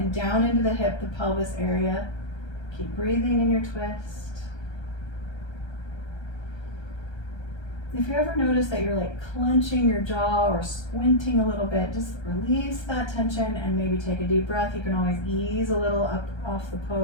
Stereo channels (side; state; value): right; late; 1.3 ms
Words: down into the hip, the pelvis area. Keep breathing in your twist. If you ever notice that you're like clenching your jaw or squinting a little bit, just release that tension and maybe take a deep breath. You can always ease a little up off the